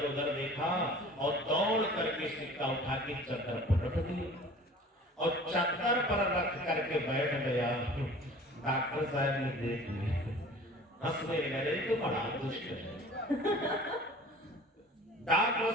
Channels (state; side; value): normal; both; correlation 0.45